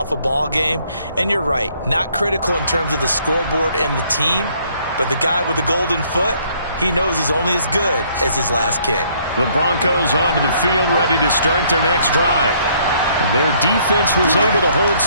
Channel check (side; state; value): both; inverted; correlation -0.64